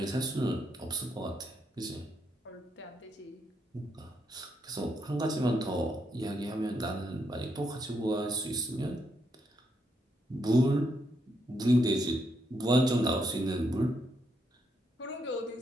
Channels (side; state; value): both; normal; correlation 0.78